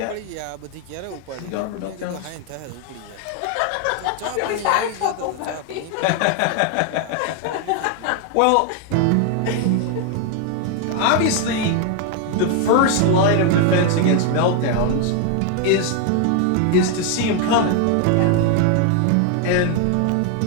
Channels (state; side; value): different; both; correlation 0.01